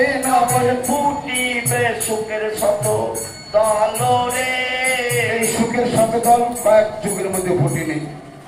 নবল ফুটিবে সুখের শত দল রে। এই সুখের শত দল কয়েক যুগের মধ্যে ফুটেনি।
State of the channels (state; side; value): identical; both; correlation 1.00